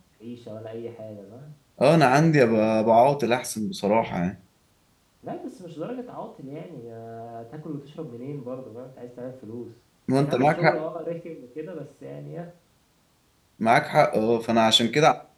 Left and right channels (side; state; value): both; identical; correlation 1.00